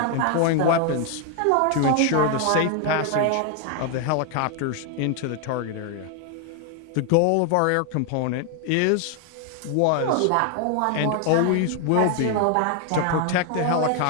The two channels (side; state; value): both; different; correlation 0.00